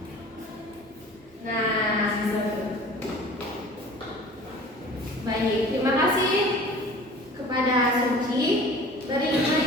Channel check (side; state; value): both; normal; correlation 0.44